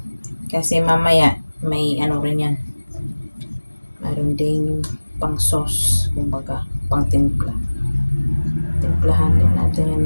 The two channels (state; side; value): inverted; both; correlation -1.00